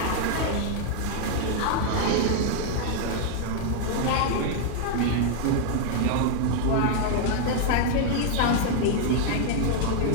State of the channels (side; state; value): both; different; correlation 0.00